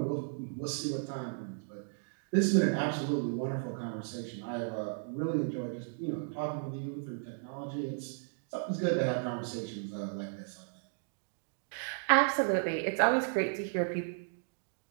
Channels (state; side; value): silent; left; digital silence